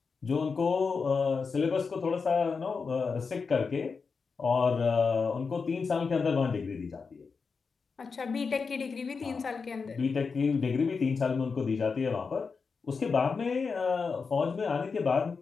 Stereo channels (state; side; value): quieter; right; 5.0 dB